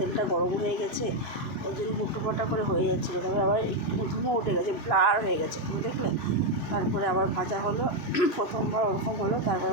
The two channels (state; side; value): late; right; 3.0 ms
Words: গরম হয়ে গেছে, ওই জন্য হুটোপাটা করে হয়ে যাচ্ছিলো। তারপরে আবার একটু ধুমো উঠে গেছে, ব্লার হয়ে গেছে, তুমি দেখলে। তারপরে আবার ভাজা হলো, প্রথমবার ওরকম হলো, তারপরে